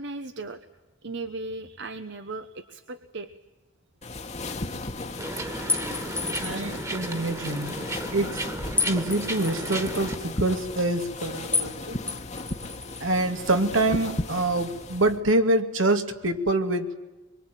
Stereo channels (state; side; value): normal; both; correlation 0.07